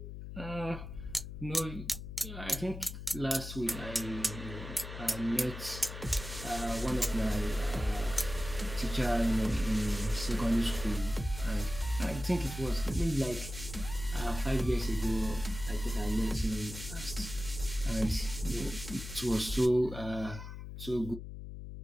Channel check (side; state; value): left; noise; hum, 9 dB below the sound